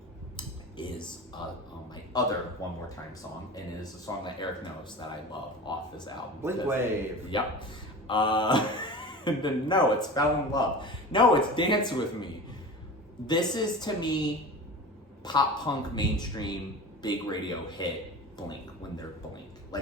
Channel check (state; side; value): normal; both; correlation 0.33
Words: is my other One More Time song, and it is a song that Eric knows that I love off this album. Blink Wave. Yep. No, it's Fell in Love. No, it's Dance With Me. This is, to me, pop punk mainstream big radio hit Blink when they're Blink.